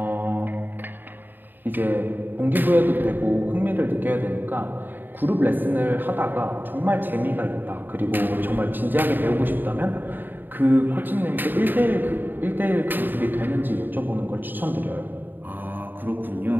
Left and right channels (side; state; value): left; late; 0.092 ms